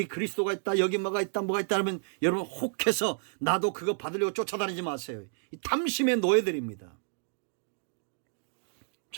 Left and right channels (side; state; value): left; silent; digital silence